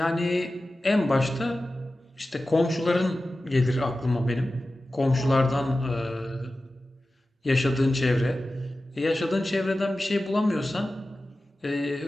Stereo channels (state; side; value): normal; both; correlation 0.95